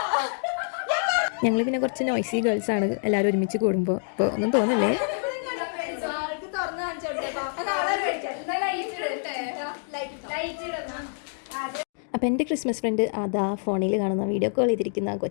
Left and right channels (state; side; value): silent; right; digital silence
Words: ഞങ്ങൾ പിന്നെ കുറച്ച് നോയ്സി ഗേൾസാണ് എല്ലാവരും ഒരുമിച്ച് കൂടുമ്പോൾ. ഇപ്പോൾ ഒന്നും തോന്നില്ലേ. അപ്പോൾ എൻ്റെ ക്രിസ്മസ് ഫ്രണ്ട് അതാ ഫോണിൽ കാണുന്ന വീഡിയോ കോൾ ചെയ്തിരിക്കുന്ന